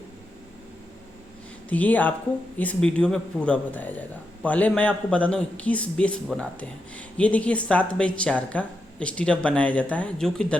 तो ये आपको इस वीडियो में पूरा बताया जाएगा। पहले मैं आपको बता दूं किस बेस बनाते हैं। ये देखिए 7x4 का स्टीरअप बनाया जाता है जो कि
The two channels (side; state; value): both; normal; correlation 0.85